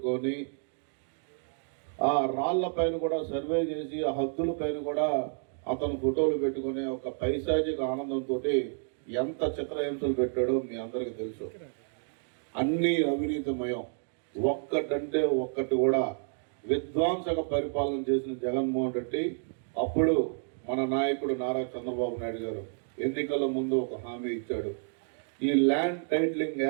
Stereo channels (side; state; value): left; silent; 58 dB below the other